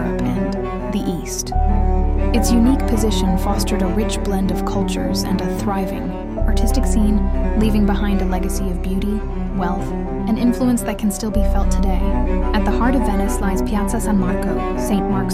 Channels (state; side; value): identical; both; correlation 1.00